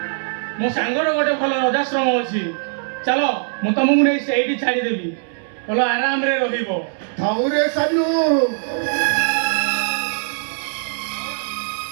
ମୋ ସାଙ୍ଗର ଗୋଟେ ଭଲ ରଜାଶ୍ରମ ଅଛି, ଚାଲ ମୁଁ ତମକୁ ନେଇ ସେଇଠି ଛାଡ଼ିଦେବି, ଭଲ ଆରାମରେ ରହିବ। ଥାଉରେ ସାନୁ,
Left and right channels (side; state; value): left; silent; 65 dB below the other